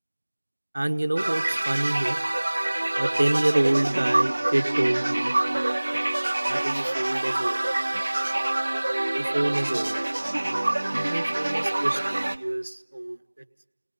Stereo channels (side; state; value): both; inverted; correlation -1.00